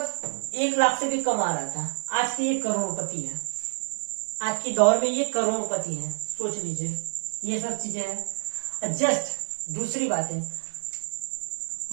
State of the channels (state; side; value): silent; left; digital silence